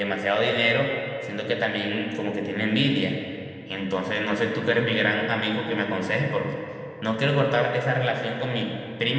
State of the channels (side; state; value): both; identical; correlation 1.00